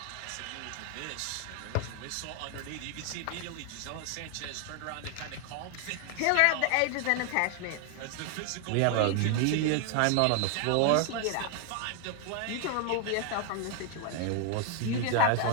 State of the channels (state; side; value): different; both; correlation 0.00